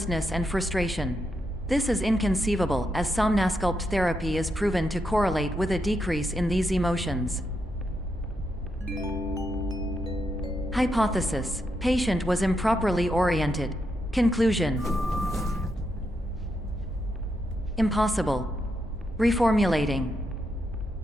and frustration. This is inconceivable, as Somnasculpt therapy is proven to correlate with a decrease in these emotions. Hypothesis: patient was improperly oriented. Conclusion: impossible. Reformulating.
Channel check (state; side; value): normal; both; correlation 0.82